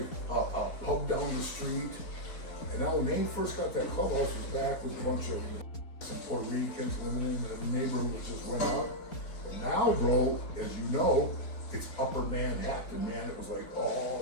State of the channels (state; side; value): late; right; 4.2 ms